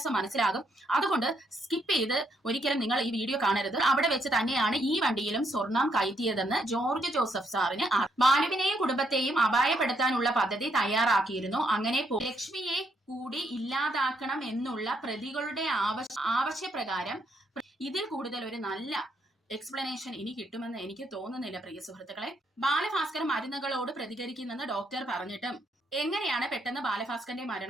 മനസ്സിലാകും. അതുകൊണ്ട് സ്കിപ്പ് ചെയ്ത് ഒരിക്കലും നിങ്ങൾ ഈ വീഡിയോ കാണരുത്. അവിടെ വെച്ച് തന്നെയാണ് ഈ വണ്ടിയിലും സ്വർണം കയറ്റിയതെന്ന് ജോർജ് ജോസഫ് സാറിന് ബാലുവിനെയും കുടുംബത്തെയും അപായപ്പെടുത്താനുള്ള പദ്ധതി തയ്യാറാക്കിയിരുന്നു. അങ്ങനെ ലക്ഷ്മിയെ കൂടി ഇല്ലാതാക്കണം എന്നുള്ള പ്രതികളുടെ ആവശ്യപ്രകാരം ഇതിൽ കൂടുതൽ ഒരു നല്ല എക്സ്പ്ലനേഷൻ ഇനി കിട്ടുമെന്ന് എനിക്ക് തോന്നുന്നില്ല പ്രിയ സുഹൃത്തുക്കളെ. ബാലഭാസ്കർ മരുന്നുകളോട് പ്രതികരിക്കുന്നെന്ന് ഡോക്ടർ പറഞ്ഞിട്ടും എങ്ങനെയാണ് പെട്ടെന്ന് ബാലഭാസ്കറിന്റെ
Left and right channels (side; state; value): both; normal; correlation 0.74